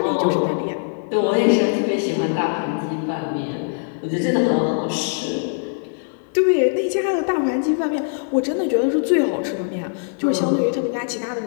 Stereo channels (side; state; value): right; silent; digital silence